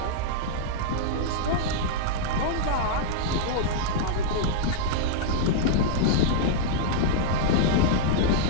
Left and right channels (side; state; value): both; different; correlation -0.01